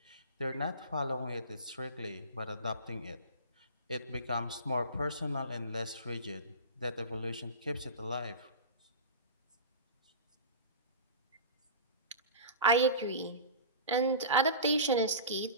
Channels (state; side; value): inverted; both; correlation -0.32